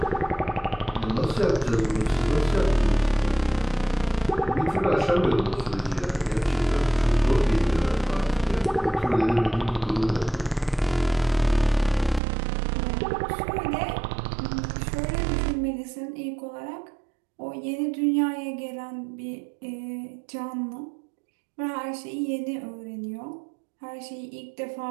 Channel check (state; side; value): drops out; left; at 12.2 s